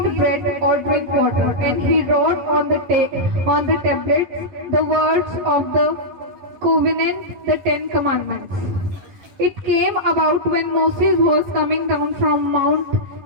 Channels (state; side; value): late; left; 11 ms